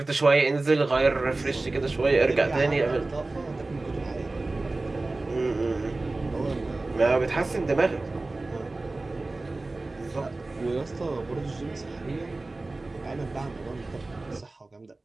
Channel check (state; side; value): quieter; left; 3.2 dB